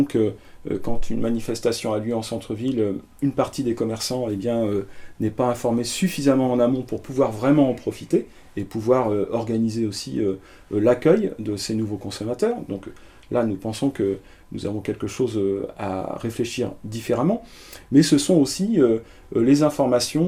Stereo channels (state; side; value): identical; both; correlation 1.00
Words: que quand une manifestation a lieu en centre-ville, une partie des commerçants n'est pas informée suffisamment en amont pour pouvoir vraiment en profiter et pouvoir organiser aussi l'accueil de ces nouveaux consommateurs. Donc là, nous pensons que nous avons quelque chose à réfléchir différemment, mais ce sont aussi les